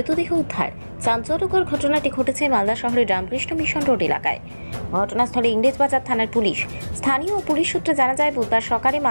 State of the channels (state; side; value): inverted; both; correlation -1.00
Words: উদ্ধার। চাঞ্চল্যকর ঘটনাটি ঘটেছে মালদা শহরের রামকৃষ্ণ মিশন রোড এলাকায়। ঘটনাস্থলে ইংরেজবাজার থানার পুলিশ। স্থানীয় পুলিশ সূত্রে জানা যায়, বুধবার সকালে